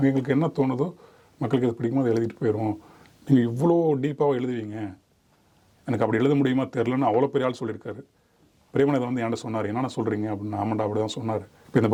எங்களுக்கு என்ன தோணுதோ மக்களுக்கு இது பிடிக்குமோ அதை எழுதிட்டு போயிடுவோம், நீங்கள் இவ்வளோ டீப்பாக எழுதுவீங்க, எனக்கு அப்படி எழுத முடியுமா தெரிலன்னு அவ்வளோ பெரிய ஆள் சொல்லியிருக்காரு. பிரேமன் இதை வந்து என்கிட்ட சொன்னார், என்னென்ன சொல்கிறீங்க அப்படின்னு. ஆமாண்டா அப்படி தான் சொன்னார். இப்போ இந்த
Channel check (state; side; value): identical; both; correlation 1.00